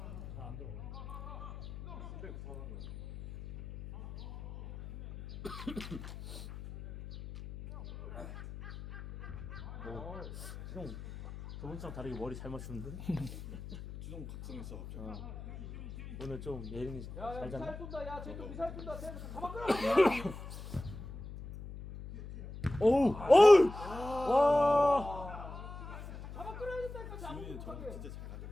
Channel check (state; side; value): noise; left; hum, 11 dB below the sound